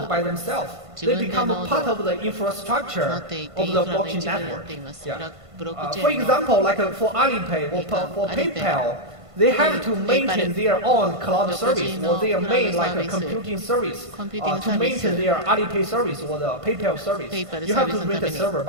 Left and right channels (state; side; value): late; left; 1.5 ms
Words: by themselves. They become a part of the infrastructure of the blockchain network. Yeah. For example, like for Alipay or for PayPal, they have to maintain their own cloud service or their main like a computing service to maintain their Alipay service or the PayPal service. You have to rent a server